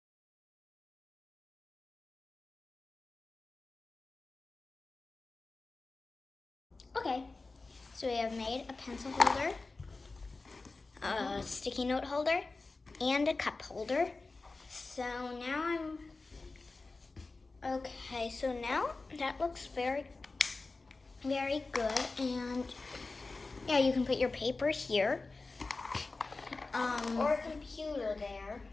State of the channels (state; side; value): quieter; right; 3.6 dB